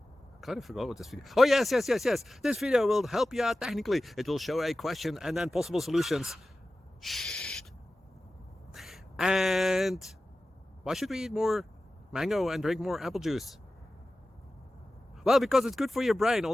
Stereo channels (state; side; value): normal; both; correlation 0.95